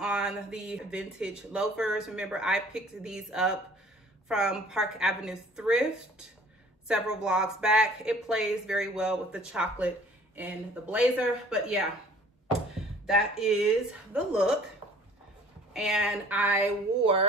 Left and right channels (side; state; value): both; normal; correlation 0.52